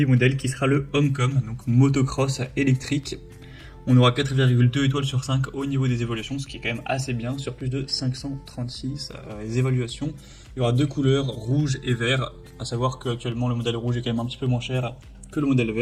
modèle qui sera le Homecom, donc motocross électrique. On aura 4,2 étoiles sur 5 au niveau des évaluations, ce qui est quand même assez bien, sur plus de 536 évaluations. Il y aura deux couleurs, rouge et vert, à savoir qu'actuellement le modèle rouge est quand même un petit peu moins cher que le modèle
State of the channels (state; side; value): identical; both; correlation 1.00